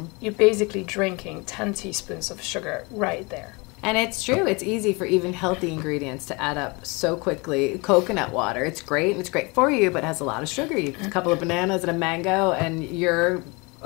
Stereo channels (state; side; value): quieter; right; 27.6 dB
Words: You're basically drinking 10 teaspoons of sugar right there. And it's true. It's easy for even healthy ingredients to add up so quickly. Coconut water, it's great, and it's great for you, but it has a lot of sugar. You have a couple of bananas and a mango, and you're